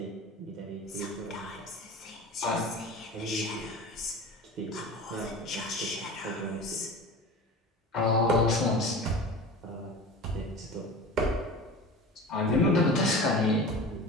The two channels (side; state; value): both; normal; correlation 0.34